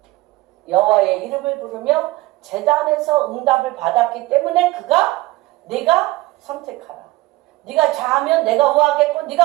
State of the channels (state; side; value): quieter; left; 19.2 dB